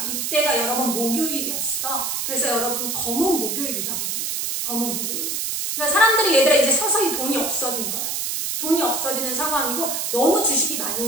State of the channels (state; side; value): noise; right; hiss, 1 dB below the sound